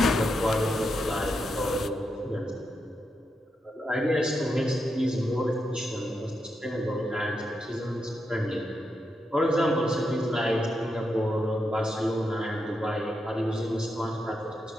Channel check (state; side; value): normal; both; correlation 0.84